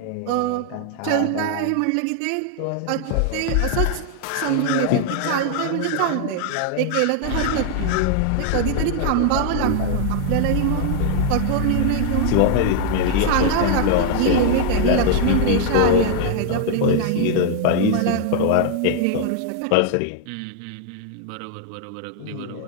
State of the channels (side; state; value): both; different; correlation 0.00